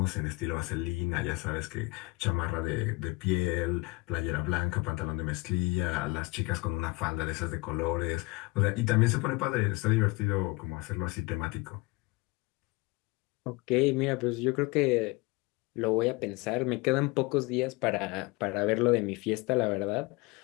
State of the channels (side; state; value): right; quieter; 24.3 dB